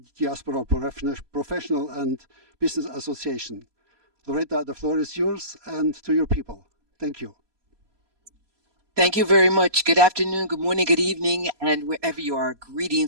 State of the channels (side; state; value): left; late; 4.2 ms